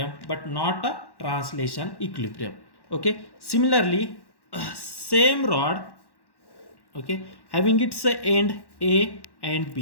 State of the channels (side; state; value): right; late; 1.1 ms